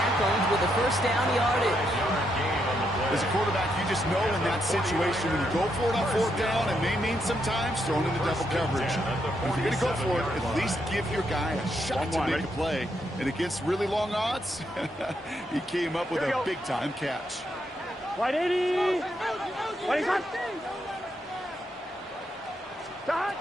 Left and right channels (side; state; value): both; normal; correlation 0.79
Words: with the 1st down yardage. As a quarterback, you just know in that situation when you go for it on 4th down, it may mean sometimes thrown into double coverage. But if you're going to go for it, at least give your guy a shot to make a play. And against really long odds, he came up with a big-time catch. 180. 25. Stop.